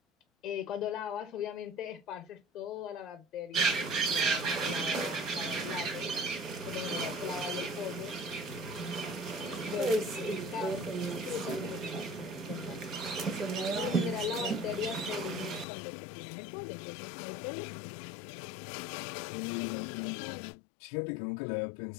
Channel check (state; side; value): drops out; right; at 15.7 s